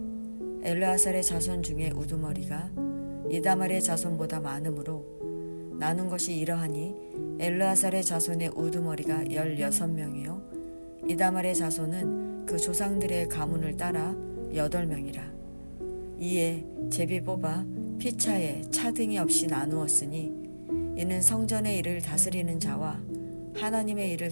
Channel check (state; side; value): inverted; both; correlation -1.00